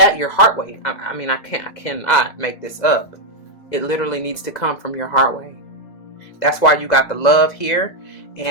your heart way. I mean, I cannot make this up. It literally needs to come from your heart way. That's why you got the love here,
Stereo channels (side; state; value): right; late; 2.0 ms